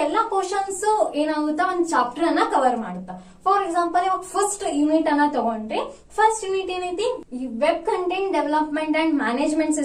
ಕ್ವಶನ್ಸ್ ಏನಾಗುತ್ತಾ, ಒಂದು ಚಾಪ್ಟರ್ ಅನ್ನ ಕವರ್ ಮಾಡುತ್ತಾ. ಫಾರ್ ಎಕ್ಸಾಂಪಲ್, ಇವಾಗ ಫಸ್ಟ್ ಯೂನಿಟ್ ಅನ್ನ ತಗೊಂಡ್ರೆ, ಫಸ್ಟ್ ಯೂನಿಟ್ ಏನೈತಿ, ಈ web content development and management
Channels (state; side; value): identical; both; correlation 1.00